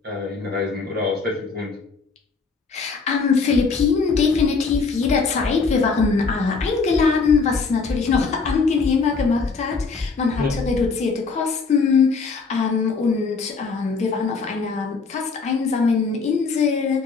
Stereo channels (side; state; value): right; quieter; 4.6 dB